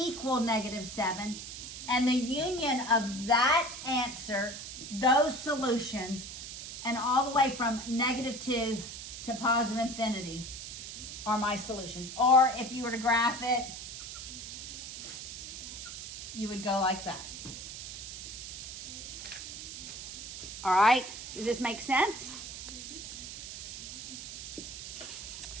-7. And the union of that answer, those solutions, and all the way from -2 to positive infinity are my solutions. Or if you were to graph it, you would go like that. All right, does this make sense?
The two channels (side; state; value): right; noise; hiss, 9 dB below the sound